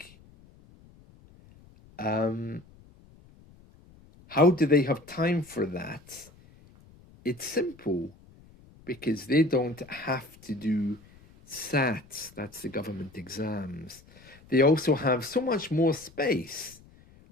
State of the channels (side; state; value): left; noise; rumble, 25 dB below the sound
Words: How do they have time for that? It's simple, because they don't have to do SATs, that's the government exams. They also have so much more space.